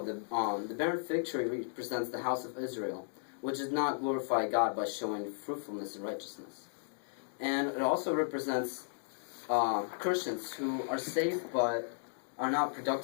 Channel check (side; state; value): right; silent; digital silence